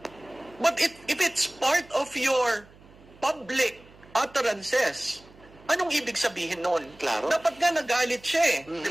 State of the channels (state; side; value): noise; right; hum, 24 dB below the sound